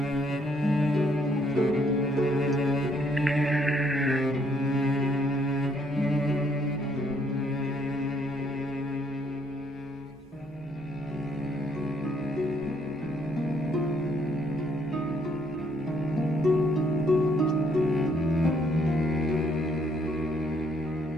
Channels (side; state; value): both; normal; correlation 0.69